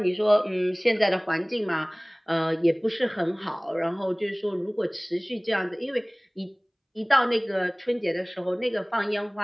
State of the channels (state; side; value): identical; both; correlation 1.00